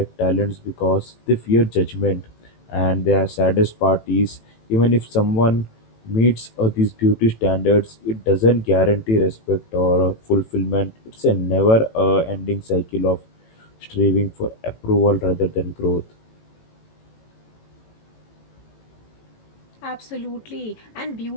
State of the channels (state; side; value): late; right; 18 ms